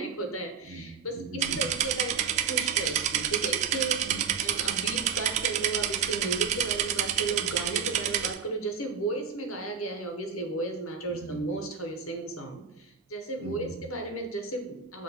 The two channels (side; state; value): left; quieter; 6.3 dB